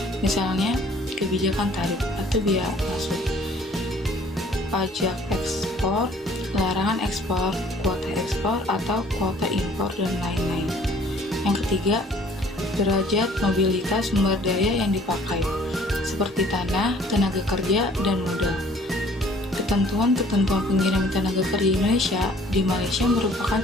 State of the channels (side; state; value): both; normal; correlation 0.56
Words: Misalnya, kebijakan tarif atau biaya masuk, pajak ekspor, larangan ekspor, kuota ekspor atau kuota impor, dan lain-lain. Yang ketiga, derajat mobilitas sumber daya yang dipakai, seperti tanah, tenaga kerja, dan modal. Ketentuan-ketentuan pengiriman tenaga kerja Indonesia di Malaysia merupakan